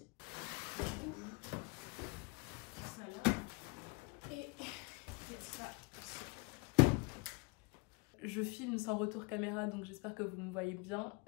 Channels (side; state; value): right; quieter; 29.2 dB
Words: Ça là. Et ça. Je filme sans retour caméra, donc j'espère que vous me voyez bien,